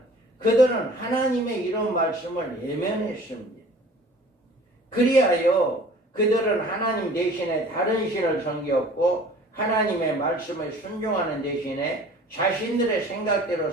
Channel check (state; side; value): normal; both; correlation 0.47